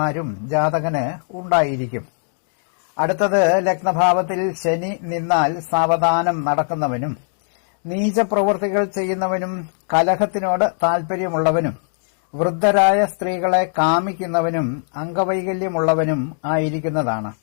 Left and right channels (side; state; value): right; silent; digital silence